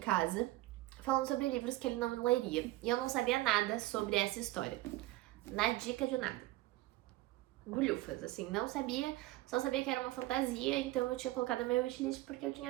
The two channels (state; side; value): quieter; left; 17.7 dB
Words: falando sobre livros que ele não leria. E eu não sabia nada sobre essa história. Na dica de nada. Bulhufas, assim, não sabia, só sabia que era uma fantasia, então eu tinha colocado na minha wishlist porque eu